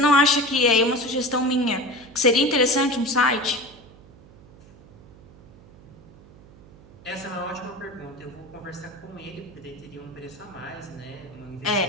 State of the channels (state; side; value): noise; right; hum, 22 dB below the sound